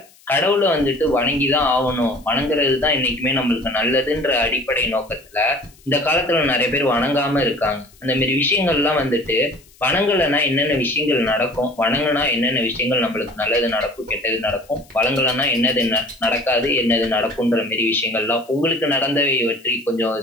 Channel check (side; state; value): left; noise; hiss, 28 dB below the sound